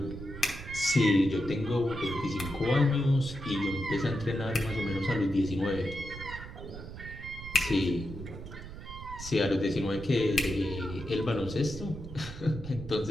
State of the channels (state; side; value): noise; right; rumble, 11 dB below the sound